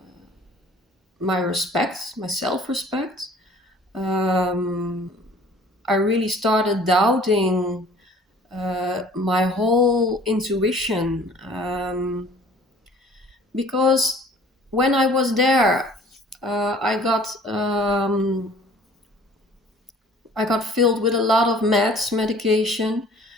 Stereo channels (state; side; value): normal; both; correlation 0.52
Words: my respect, my self-respect. um, I really started doubting my whole intuition, because when I was there, I got filled with a lot of medication.